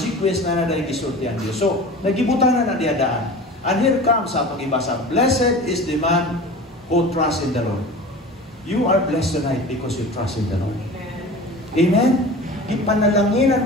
na daay gisulti ang Dios. So, nagibutanan na diya daan. And here comes sa atong ibasa, blessed is the man who trusts in the Lord. You are blessed tonight because you trust in the Lord. Amen?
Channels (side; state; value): both; normal; correlation 0.36